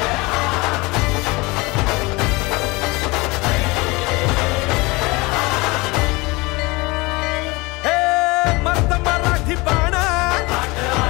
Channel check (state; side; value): quieter; right; 24.2 dB